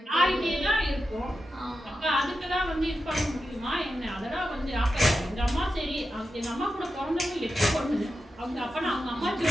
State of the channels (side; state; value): both; normal; correlation 0.90